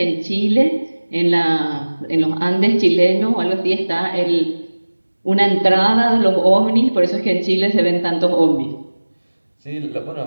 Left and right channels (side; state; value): both; inverted; correlation -1.00